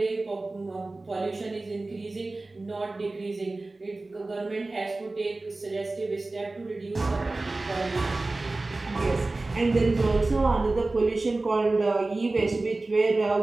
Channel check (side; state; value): left; quieter; 3.1 dB